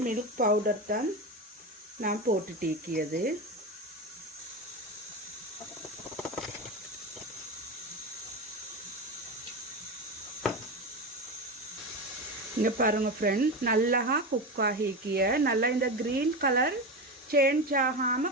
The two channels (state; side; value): normal; both; correlation 0.20